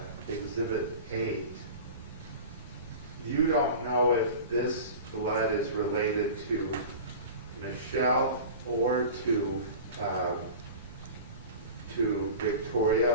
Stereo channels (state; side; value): inverted; both; correlation -0.35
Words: 8, you don't know if this blood is related to Michelle or to